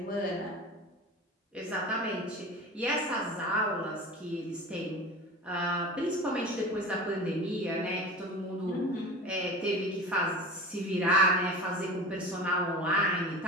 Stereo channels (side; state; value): both; normal; correlation 0.34